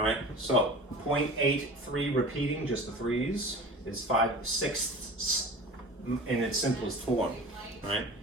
right, so 0.83 repeating, just the 3's, is 5/6 in its simplest form, right?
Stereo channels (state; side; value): normal; both; correlation 0.38